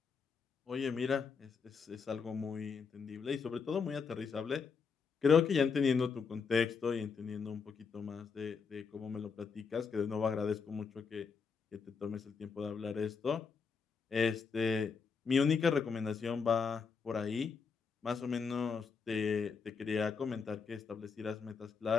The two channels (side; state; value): right; quieter; 5.5 dB